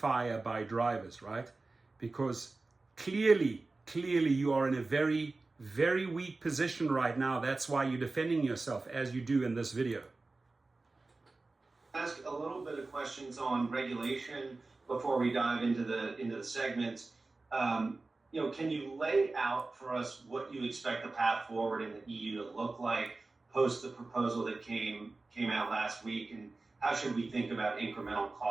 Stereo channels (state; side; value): quieter; left; 3.5 dB